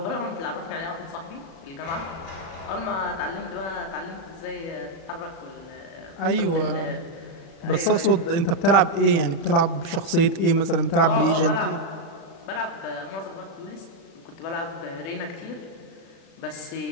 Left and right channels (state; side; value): late; right; 36 ms